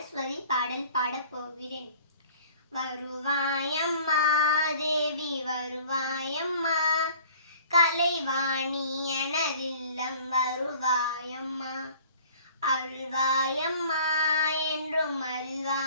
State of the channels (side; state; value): both; inverted; correlation -0.50